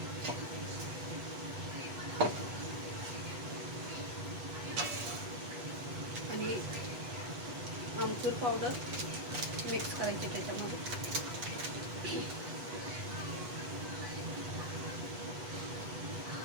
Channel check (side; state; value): left; late; 8.2 ms